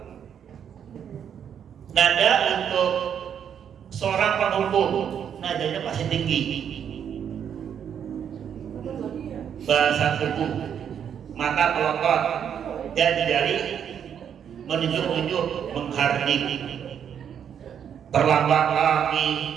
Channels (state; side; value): quieter; left; 8.5 dB